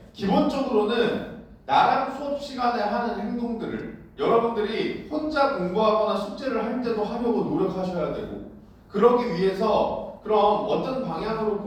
기본적으로는 나랑 수업 시간에 하는 행동들을 여러분들이 혼자 공부하거나 숙제를 할 때도 하려고 노력하셔야 되고, 그러기 위해서 그럼 어떤 방향으로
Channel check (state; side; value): identical; both; correlation 1.00